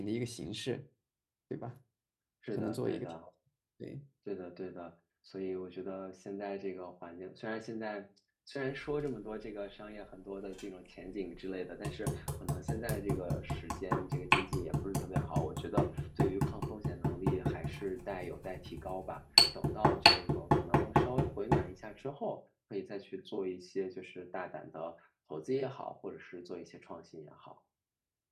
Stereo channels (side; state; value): both; identical; correlation 1.00